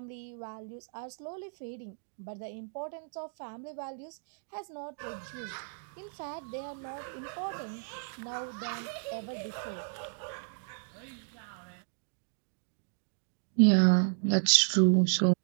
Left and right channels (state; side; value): silent; left; digital silence